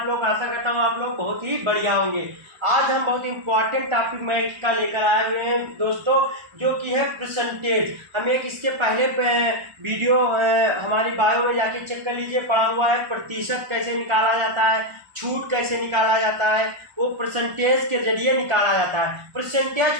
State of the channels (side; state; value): left; late; 1.4 ms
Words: लोग? आशा करता हूँ आप लोग बहुत ही बढ़िया होंगे। आज हम बहुत इंपॉर्टेंट टॉपिक मैथ का लेकर आए हुए हैं दोस्तों, जो कि है परसेंटेज। हम एक इसके पहले वीडियो हमारी बायो में जाके चेक कर लीजिए, पढ़ा हुआ है प्रतिशत कैसे निकाला जाता है, छूट कैसे निकाला जाता है, वो परसेंटेज के जरिए निकाला जाता है।